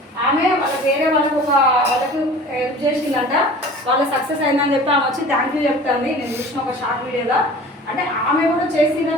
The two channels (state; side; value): normal; both; correlation 0.42